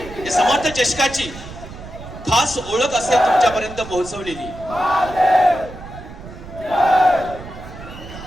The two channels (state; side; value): noise; right; rumble, 14 dB below the sound